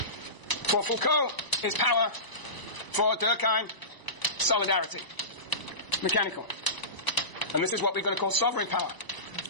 For Foucault is power. For Durkheim, solidarity. Mechanical. And this is what we're going to call sovereign power.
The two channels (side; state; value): right; late; 1.0 ms